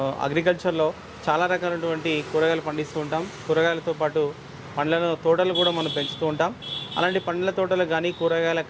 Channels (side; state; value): both; identical; correlation 1.00